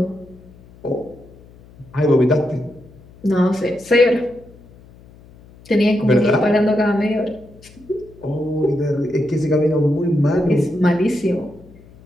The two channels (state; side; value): noise; left; hum, 24 dB below the sound